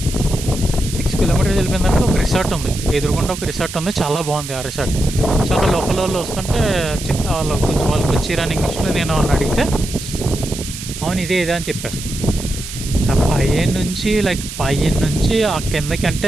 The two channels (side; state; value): right; noise; hiss, 10 dB below the sound